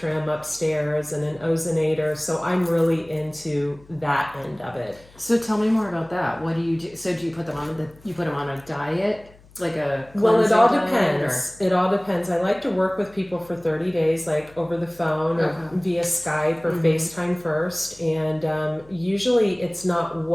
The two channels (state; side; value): noise; left; hum, 26 dB below the sound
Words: upstairs and an ozonator. So I'm really into that end of it. So tell me more about that. What do you do? So do you put them on a diet? Like a Well, it all diet, depends. It all depends. I like to work with people for 30 days, like over the phone or via Skype or FaceTime first. And usually it's not